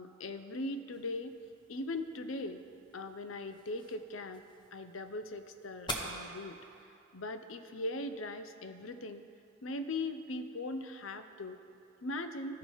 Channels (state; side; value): normal; both; correlation 0.13